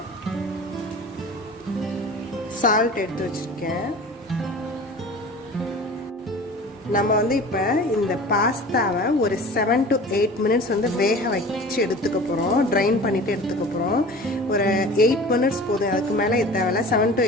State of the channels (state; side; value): normal; both; correlation 0.40